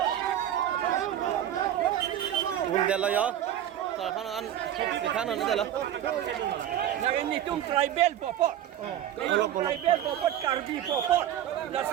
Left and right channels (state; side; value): quieter; left; 11.2 dB